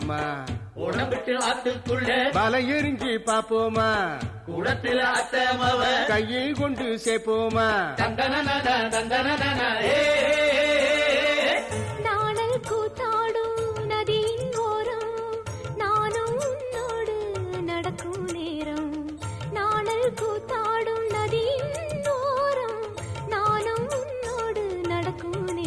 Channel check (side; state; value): both; identical; correlation 1.00